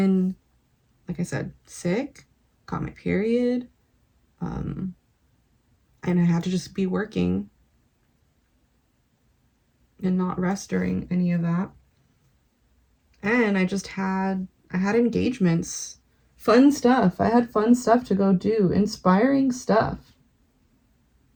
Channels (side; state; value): both; identical; correlation 1.00